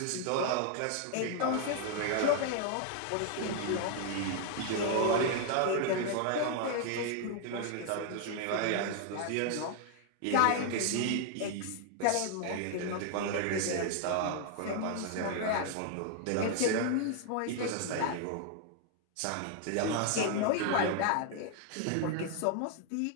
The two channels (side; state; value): both; different; correlation 0.00